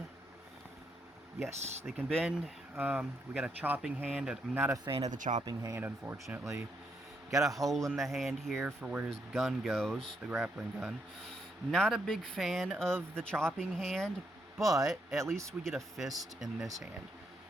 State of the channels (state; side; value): normal; both; correlation 0.77